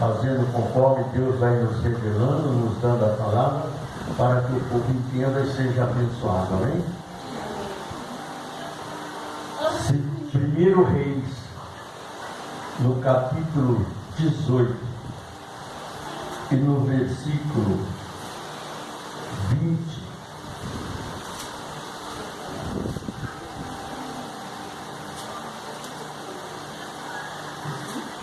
conforme Deus vai nos revelando, nos dando a palavra, para que o povo entenda e seja abençoado. Amém? 1 Reis, no capítulo 18 e no versículo 20.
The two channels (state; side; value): identical; both; correlation 1.00